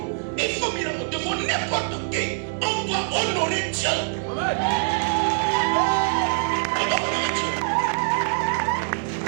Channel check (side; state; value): left; silent; 63 dB below the other